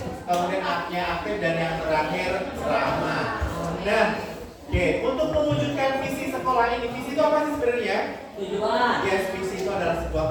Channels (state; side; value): identical; both; correlation 1.00